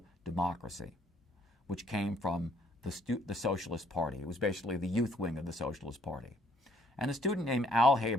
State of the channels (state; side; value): normal; both; correlation 0.65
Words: Democracy, which came from the Socialist Party. It was basically the youth wing of the Socialist Party. And a student named Al